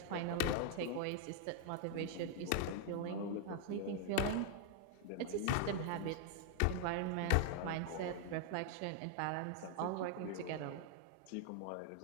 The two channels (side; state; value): both; different; correlation 0.00